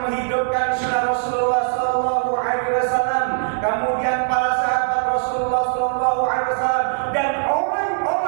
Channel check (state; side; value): silent; left; 61 dB below the other